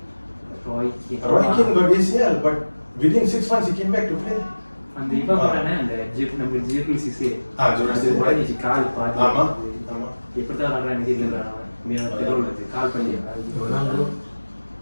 got ACL but within 6 months he came back to play. அந்த இவ போறானே அந்த நம்ம Geophysics உடனே கால் பாதி ஆமா எப்படி தான் ஆடுறானே தெரியல மேல தெருவுல கால் பண்ணி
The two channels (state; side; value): inverted; both; correlation -1.00